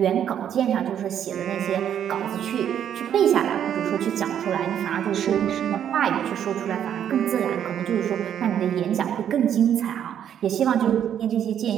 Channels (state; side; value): quieter; left; 9.5 dB